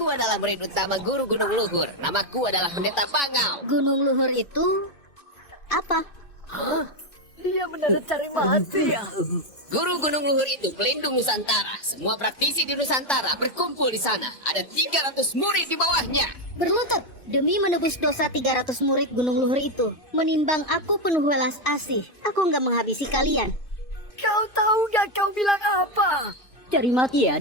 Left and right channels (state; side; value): late; right; 2.6 ms